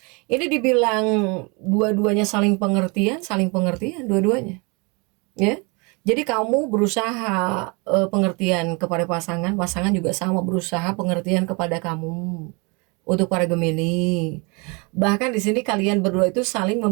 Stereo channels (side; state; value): left; quieter; 30.1 dB